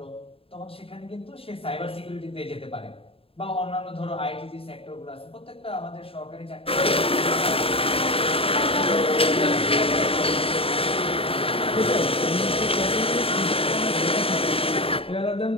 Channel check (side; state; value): right; late; 0.27 ms